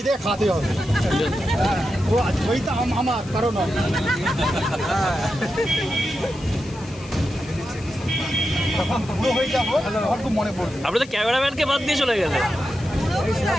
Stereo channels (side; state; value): left; noise; hiss, 20 dB below the sound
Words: দিয়ে খাতে হবে। ও জয়টা আমার কারণ হয়ে যাবো আমার খুব মনে পড়বে। আপনি তো ক্যামেরাম্যানকে বাদ দিয়ে চলে গেলেন।